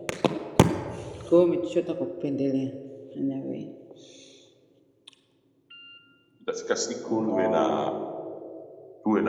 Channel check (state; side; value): identical; both; correlation 1.00